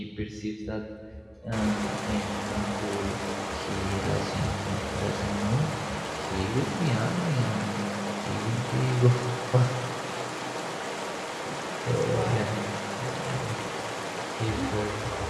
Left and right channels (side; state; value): both; identical; correlation 1.00